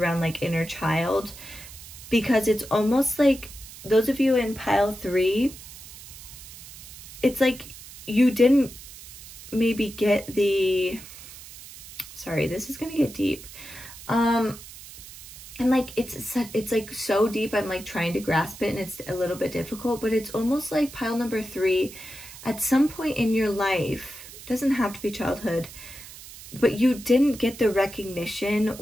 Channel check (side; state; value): right; noise; hiss, 16 dB below the sound